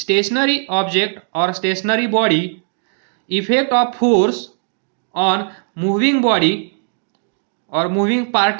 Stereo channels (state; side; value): silent; left; digital silence